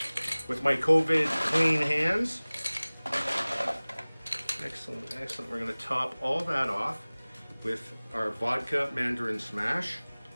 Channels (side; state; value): both; inverted; correlation -1.00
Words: with my COVID clean hands. Excellent, excellent. We're going to top all that off with our vodka mandarin smash,